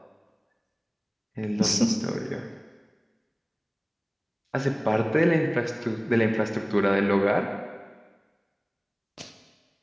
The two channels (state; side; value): identical; both; correlation 1.00